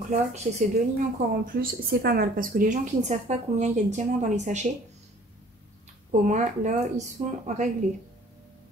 là, qu'il y ait ces deux lignes encore en plus, c'est pas mal. Parce que les gens qui ne savent pas combien il y a de diamants dans les sachets, au moins là, ils sont réglés.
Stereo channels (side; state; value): both; normal; correlation 0.53